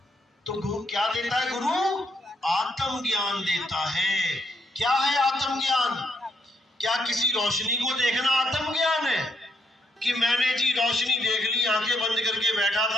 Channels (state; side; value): normal; both; correlation 0.75